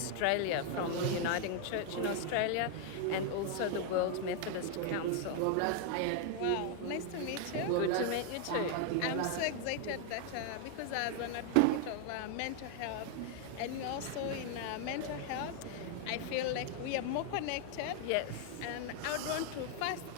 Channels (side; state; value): both; different; correlation 0.00